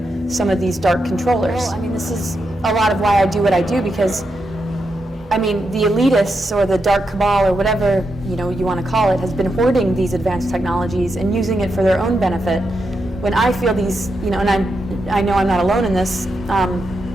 some of these dark controllers. Well, I mean, this is a lot of why I do what I do, because I mean, the elitists or the dark cabal or whatever you want to call it has been hoarding these advanced technologies and using it for their own benefit. When I feel these, and I know I'm not alone in this,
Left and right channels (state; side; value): normal; both; correlation 0.85